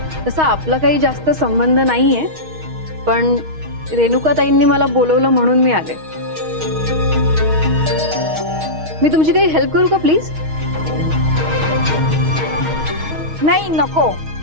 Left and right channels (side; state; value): left; late; 6.4 ms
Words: तसा आपला काही जास्त संबंध नाहीये, पण रेणुकाताईंनी मला बोलवलं म्हणून मी आले. मी तुमची काही हेल्प करू का प्लीज? नाही नको.